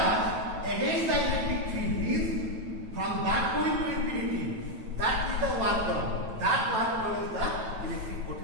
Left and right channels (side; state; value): left; late; 9.1 ms